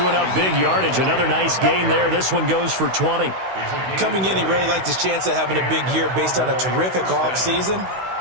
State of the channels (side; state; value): left; late; 16 ms